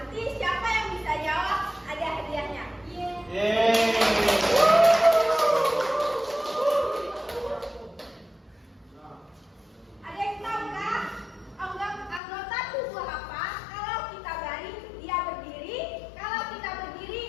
siapa yang bisa jawab ada hadiahnya. Yeay. Ada yang tahu nggak anggota tubuh apa? Kalau kita baring, dia berdiri. Kalau kita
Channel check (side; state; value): right; drops out; at 12.2 s